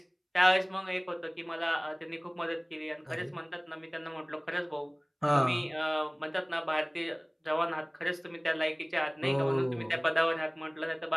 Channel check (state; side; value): identical; both; correlation 1.00